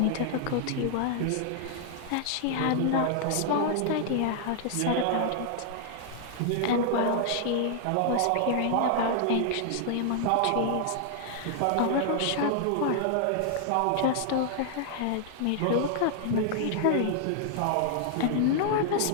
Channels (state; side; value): different; both; correlation -0.01